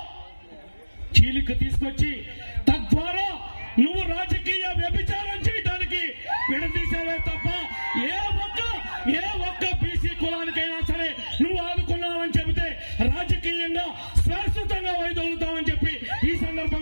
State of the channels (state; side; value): inverted; both; correlation -1.00